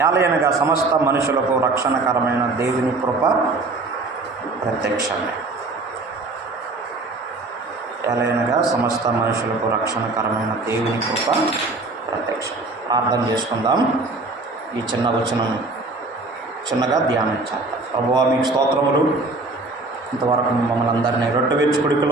ఏలయనగా సమస్త మనుషులకు రక్షణకరమైన దేవుని కృప ప్రత్యక్షమే. ఏలయనగా సమస్త మనుషులకు రక్షణకరమైన దేవుని కృప ప్రత్యక్షం. ప్రార్థన చేసుకుందాం. ఈ చిన్న వచనం చిన్నగా ధ్యానించాలి. ప్రభువా, మీకు స్తోత్రములు. ఇంతవరకు మమ్మల్ని అందరినీ రొట్టె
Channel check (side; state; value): left; quieter; 3.3 dB